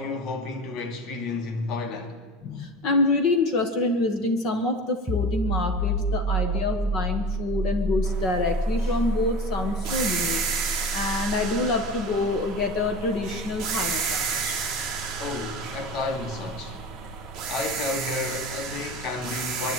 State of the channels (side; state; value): both; normal; correlation 0.33